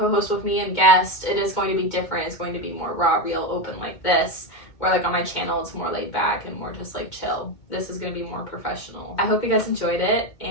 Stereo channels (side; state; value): right; late; 2.2 ms